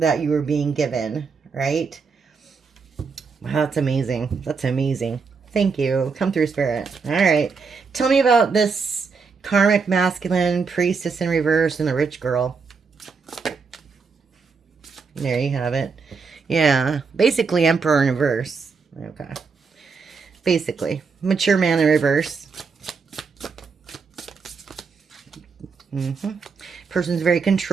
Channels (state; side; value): quieter; left; 5.1 dB